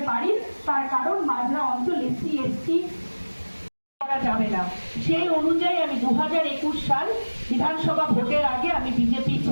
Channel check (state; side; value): inverted; both; correlation -1.00